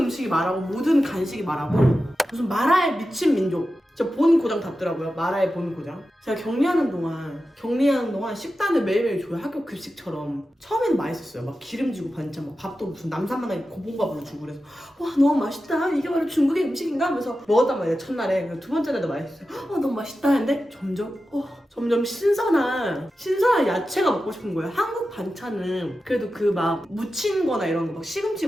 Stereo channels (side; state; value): both; normal; correlation 0.92